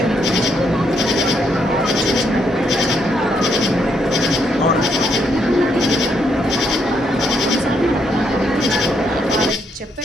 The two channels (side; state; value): both; normal; correlation 0.75